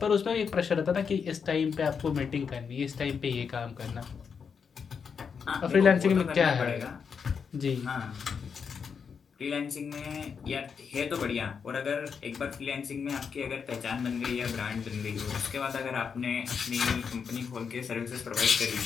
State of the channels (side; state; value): right; quieter; 6.3 dB